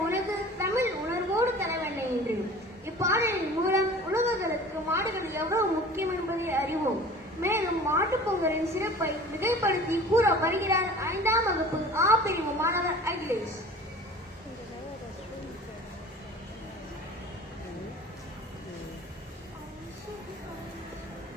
உனது தமிழ் உணர்வோடு தலைவண்ணை என்று இப்பாடலின் மூலம் உலகங்களுக்கு மாடுகள் எவ்வளவு முக்கியம் என்பதை அறிவோம். மேலும் மாட்டுப் பொங்கலின் சிறப்பை மிகைப்படுத்தி கூற வருகிறார் 5ஆம் வகுப்பு ஆ பிரிவு மாணவர் அகிலேஷ்.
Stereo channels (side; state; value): both; normal; correlation 0.42